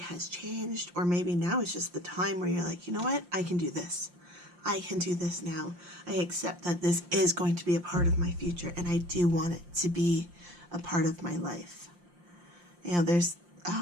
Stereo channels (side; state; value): left; late; 5.7 ms